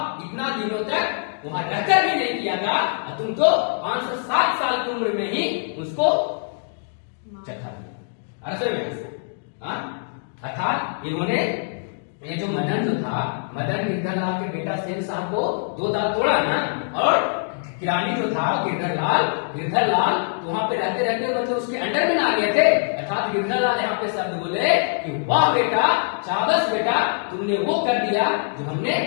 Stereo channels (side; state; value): right; silent; digital silence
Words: इतना दिनों तक वहां रहकर भी नहीं किया था, और तुम तो 507 साल की उम्र में ही उसको चखा दिया। अरसे में अर्थात इन्होंने ये जो मदन जो था, मदन गिरधर लाल के बेटा सेन साहब को 2 दांत तोड़ा ना, और किरानी जो था गिरधर लाल तो वहां पे रहते रहते मतलब उसके अंडर में ना आ गए थे। अर्थात गिरधर लाल यहाँ पे शब्द बोले कि वाह बेटा, शाबाश बेटा, तुमने वो कर दिया जो हमने